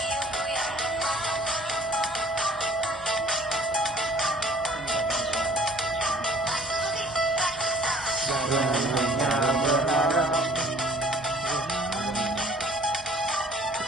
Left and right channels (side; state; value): both; normal; correlation 0.54